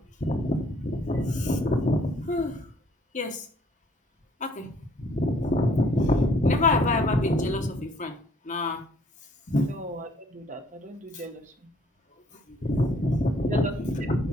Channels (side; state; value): both; normal; correlation 0.62